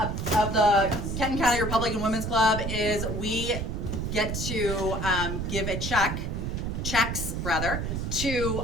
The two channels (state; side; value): noise; right; rumble, 3 dB below the sound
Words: the Kenton County Republican Women's Club is we get to give a checks to